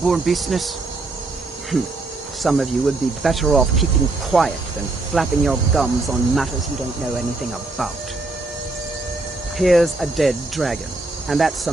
business? Some of you would be better off keeping quiet than flapping your gums on matters you don't know anything about. Here's a dead dragon, and that's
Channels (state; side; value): quieter; left; 3.3 dB